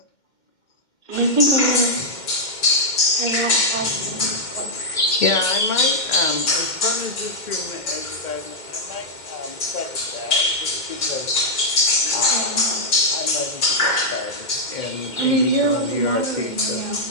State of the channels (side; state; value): right; late; 2.1 ms